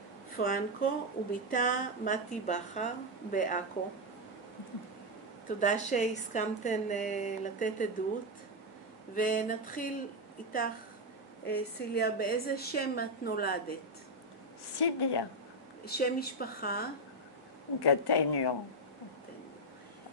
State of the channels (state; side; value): normal; both; correlation 0.04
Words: פרנקו וביתה מתי בכר בעכו. תודה שהסכמתן לתת עדות, ונתחיל איתך, סיליה. באיזה שם את נולדת? סיליה. שם משפחה? גטניו.